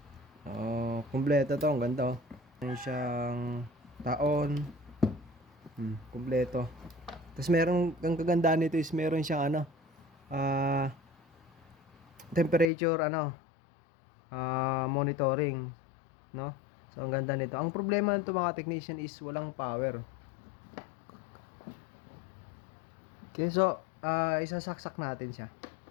Kumpleto to, ang ganda, oh. Meron siyang taon, kumpleto. Tapos meron, ang kagandaan nito is meron siyang temperature, monitoring, no? So ang ganda nito. Ang problema nito mga technician is walang power. Okay, so isasaksak natin siya.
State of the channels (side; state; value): right; drops out; at 12.7 s